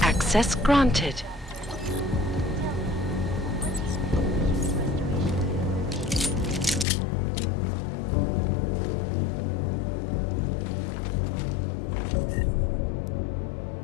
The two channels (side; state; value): right; drops out; at 6.9 s